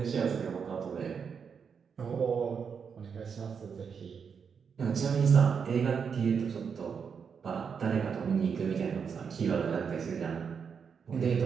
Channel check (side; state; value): left; quieter; 6.5 dB